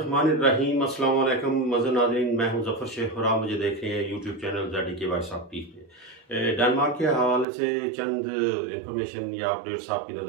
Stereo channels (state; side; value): drops out; left; at 7.5 s